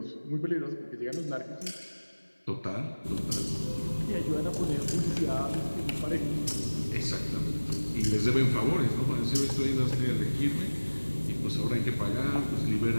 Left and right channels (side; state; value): both; inverted; correlation -1.00